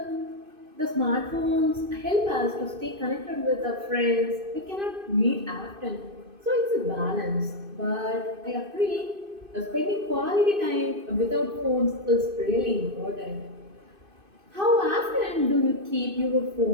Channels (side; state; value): left; late; 2.5 ms